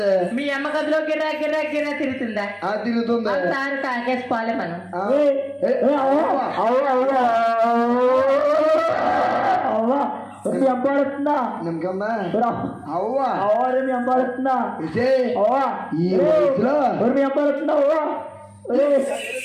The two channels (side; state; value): both; identical; correlation 1.00